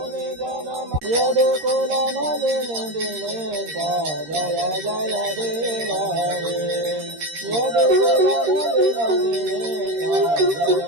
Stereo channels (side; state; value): left; late; 13 ms